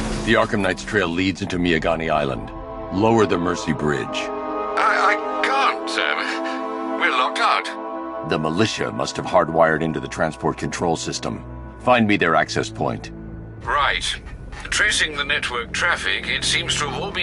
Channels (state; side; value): identical; both; correlation 1.00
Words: the Arkham Knight's trail leads into Miagani Island. Lower the Mercy Bridge. I can't, sir. We're locked out. The militia must have hardwired into the transport control system. Find me their access point. Right. Tracing the network traffic, it seems to have all